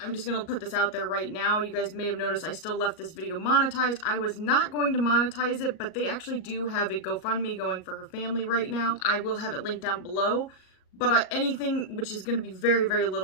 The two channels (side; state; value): right; late; 38 ms